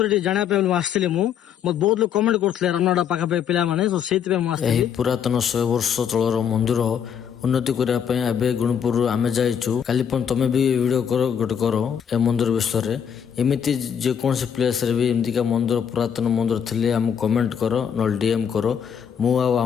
जाना पे आसली मत बहुत लोग कमेंट करते रामनगड़ा पाखापाखि पिला माने तो सेट पे एही पुरातन 100 वर्ष तलर मंदिर उन्नति करने गुणपुर आमे जाइछु काली तमे भी वीडियो करो गोटे करो ए मंदिर विषय एमती जेकोसी प्लेस रे भी एमती का मंदिर पुरातन मंदिर थिले हम कमेंट करो न डीएम करो मु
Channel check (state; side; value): quieter; right; 8.1 dB